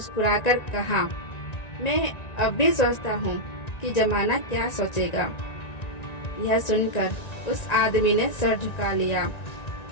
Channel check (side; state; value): right; late; 1.9 ms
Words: कहा, मैं अब भी सोचता हूँ कि जमाना क्या सोचेगा। यह सुनकर उस आदमी ने सर झुका लिया,